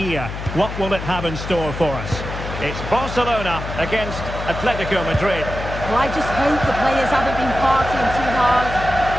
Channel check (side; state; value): left; noise; hum, 7 dB below the sound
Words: What will it have in store for us? It's Barcelona against Atletico Madrid. Well, I just hope the players haven't been partying too hard.